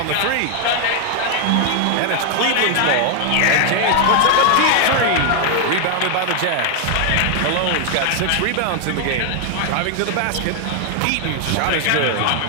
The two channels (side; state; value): both; different; correlation 0.00